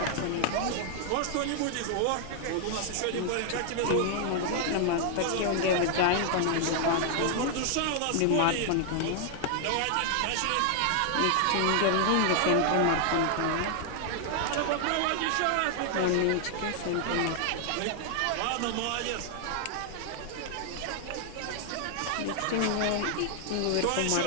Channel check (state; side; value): different; both; correlation 0.00